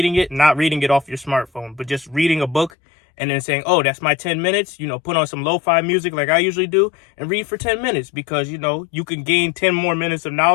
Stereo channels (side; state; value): right; drops out; at 2.7 s